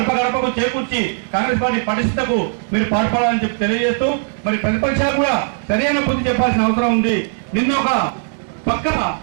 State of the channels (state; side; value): silent; left; 67 dB below the other